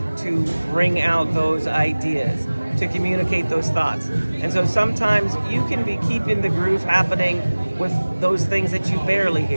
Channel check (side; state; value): both; inverted; correlation -1.00